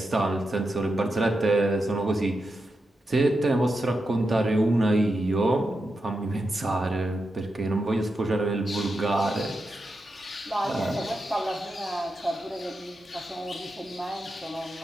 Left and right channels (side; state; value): both; normal; correlation 0.87